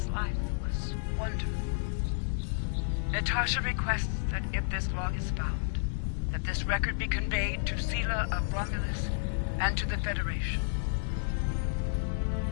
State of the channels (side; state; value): right; silent; digital silence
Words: life was wonderful. Natasha requests that if this log is found, that this record be conveyed to Sela of Romulus and to the Federation.